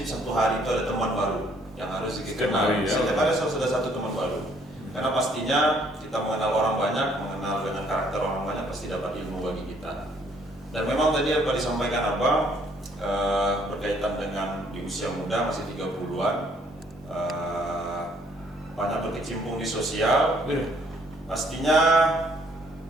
satu hari itu ada teman baru yang harus Zikri kenal. Setiap hari harus ada satu teman baru. Karena pastinya kita mengenal orang banyak, mengenal dengan karakter orang banyak, pasti dapat ilmu bagi kita. Dan memang tadi apa disampaikan berkaitan dengan di usia muda, masih 30-an, banyak berkecimpung di sosial, pastinya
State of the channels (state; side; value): normal; both; correlation 0.64